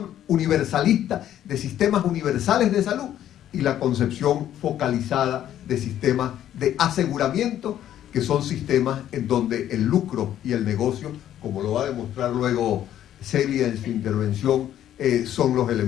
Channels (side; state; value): right; quieter; 11.4 dB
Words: universalista de sistemas universales de salud y la concepción focalizada de sistemas de aseguramiento, que son sistemas en donde el lucro y el negocio, como lo va a demostrar luego Celia en su intervención, son los